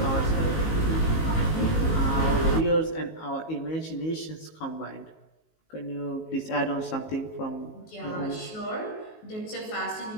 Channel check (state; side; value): late; right; 19 ms